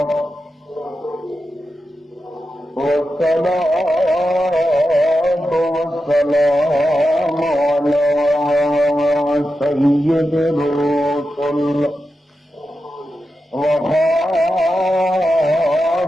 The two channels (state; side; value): normal; both; correlation 0.90